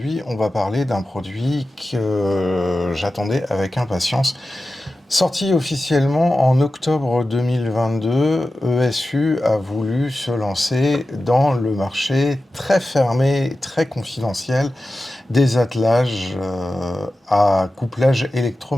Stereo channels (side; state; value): both; normal; correlation 0.94